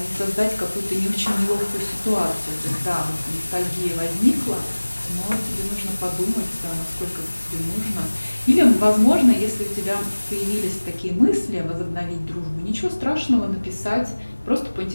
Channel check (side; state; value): both; inverted; correlation -1.00